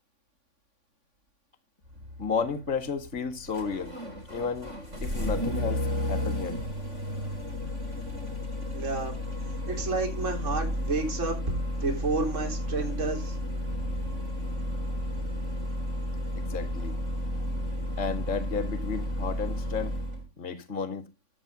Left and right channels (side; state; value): left; late; 3.5 ms